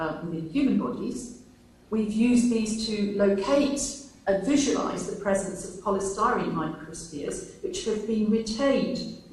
within human bodies. We've used these to locate and visualise the presence of polystyrene microspheres, which have been retained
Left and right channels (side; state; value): both; identical; correlation 1.00